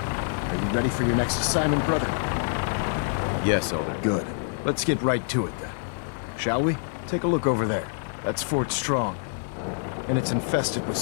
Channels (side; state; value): right; silent; digital silence